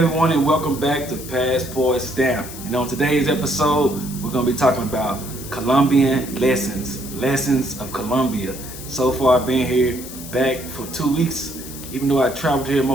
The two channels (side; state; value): left; noise; hiss, 13 dB below the sound